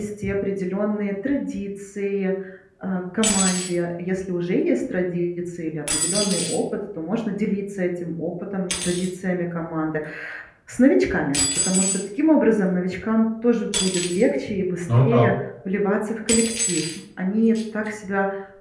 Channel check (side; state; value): both; identical; correlation 1.00